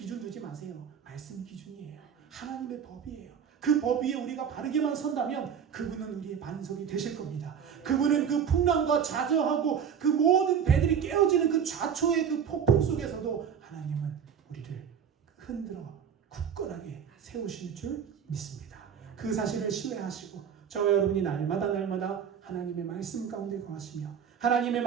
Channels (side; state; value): left; quieter; 7.7 dB